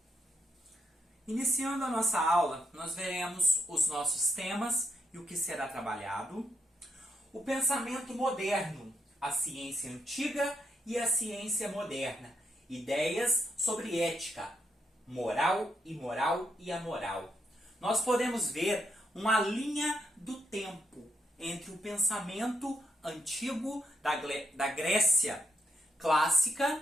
Iniciando a nossa aula, nós veremos os nossos temas e o que será trabalhado. O pensamento moderno, a ciência antiga e a ciência moderna. Ideias sobre ética, moral, imoral e amoral. Nós podemos ver uma linha do tempo entre o pensamento antigo da Grécia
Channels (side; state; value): both; normal; correlation 0.79